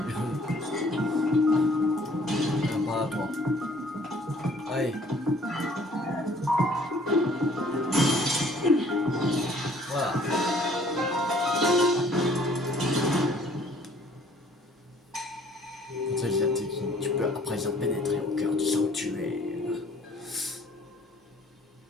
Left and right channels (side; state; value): both; normal; correlation 0.57